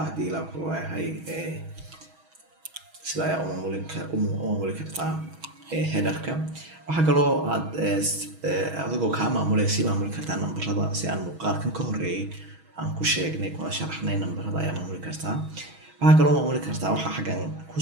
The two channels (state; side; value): late; left; 6.2 ms